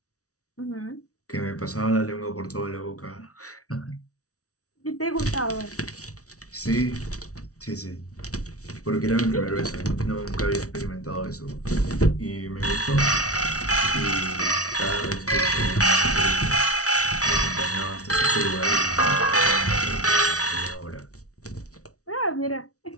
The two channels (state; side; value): late; right; 0.66 ms